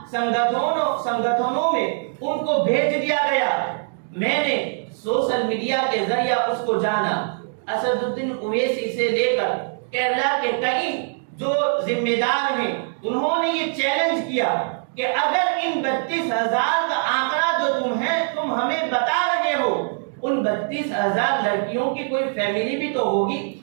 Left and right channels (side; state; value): left; silent; digital silence